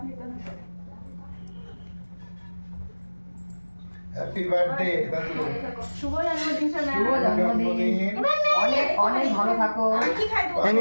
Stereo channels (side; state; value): both; inverted; correlation -1.00